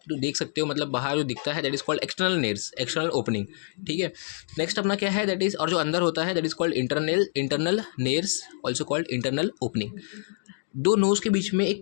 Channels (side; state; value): right; silent; digital silence